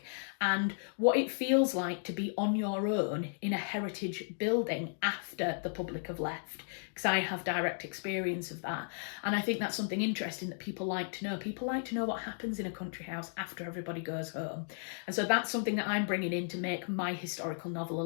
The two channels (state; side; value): silent; right; digital silence